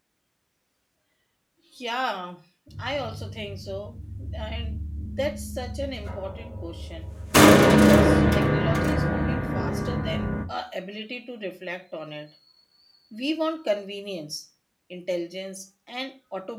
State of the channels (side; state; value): both; identical; correlation 1.00